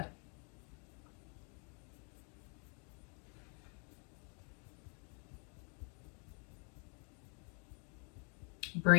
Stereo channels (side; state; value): right; quieter; 38.0 dB